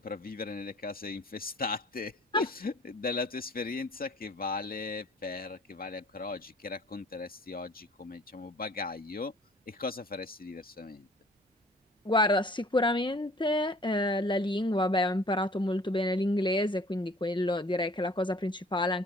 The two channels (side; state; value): both; normal; correlation 0.52